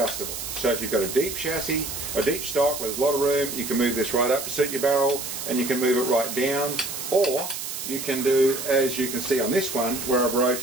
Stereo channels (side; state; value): right; noise; hiss, 6 dB below the sound